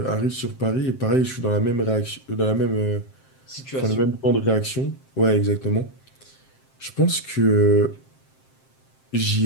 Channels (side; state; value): right; late; 7.6 ms